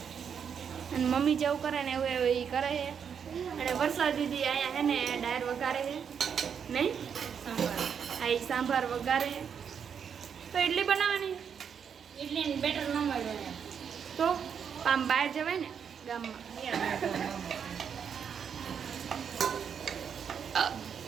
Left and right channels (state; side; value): quieter; left; 7.3 dB